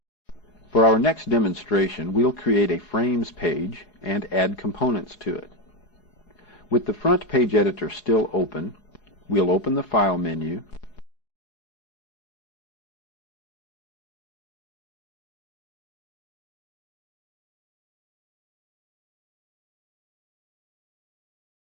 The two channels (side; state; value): right; late; 4.8 ms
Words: For our next demonstration, we'll create a frames page and add components to it. With the front page editor still open, we'll open the File menu,